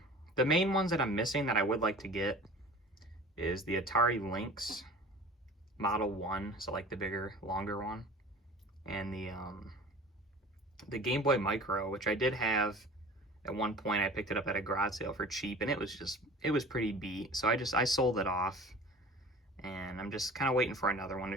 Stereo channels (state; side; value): normal; both; correlation 0.41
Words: main ones that I'm missing that I would like to get is the Atari Lynx Model 1, so like the bigger, longer one, and the Game Boy Micro, which I did have at one point. I picked it up at a garage sale for cheap, and it was pretty beat, so I sold it off, and I'm just kind of waiting for another one to